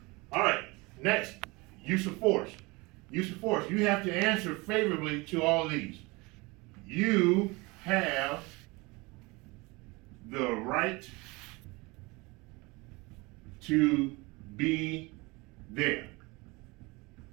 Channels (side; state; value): left; quieter; 25.1 dB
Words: All right, next, use of force. Use of force. You have to answer favorably to all of these. You have the right to be there.